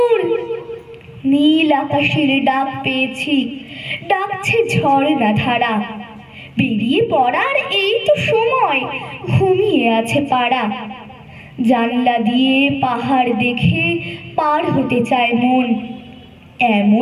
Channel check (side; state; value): both; identical; correlation 1.00